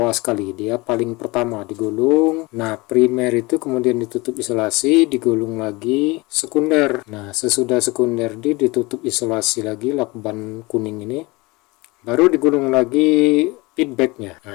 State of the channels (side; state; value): right; quieter; 24.0 dB